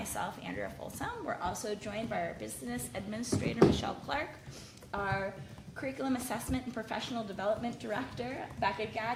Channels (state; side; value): identical; both; correlation 1.00